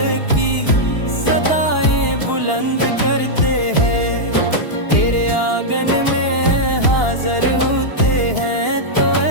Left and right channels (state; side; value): late; right; 2.9 ms